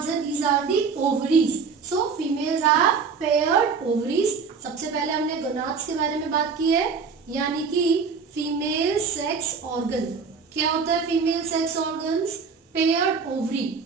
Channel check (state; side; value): quieter; left; 5.5 dB